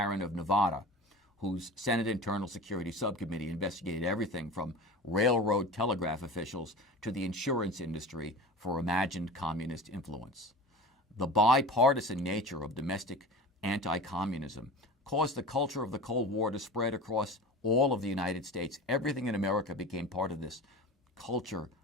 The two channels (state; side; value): normal; both; correlation 0.34